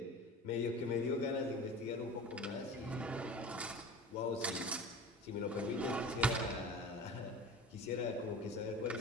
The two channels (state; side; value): normal; both; correlation 0.37